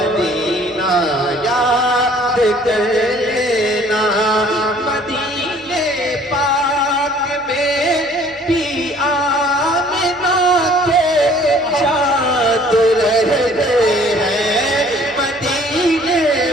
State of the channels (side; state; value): both; normal; correlation 0.55